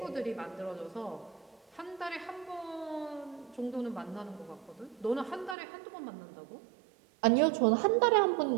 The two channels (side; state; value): left; drops out; at 5.6 s